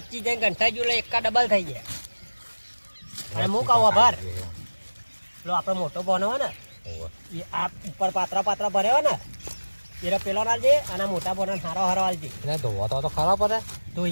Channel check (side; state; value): both; inverted; correlation -1.00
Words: જઈને ઘંટા જો એકા ડબલ થઈ ગયા અને હું કહું ભર લો આપણે મોટો બોનો હોય ને એ આ ઉપર પાત્રા ભર્યો ને એ પેલો નાલજે અને મોટા બોનો હારો હાલજે એટલે ધોવા તો ખરાબ પડે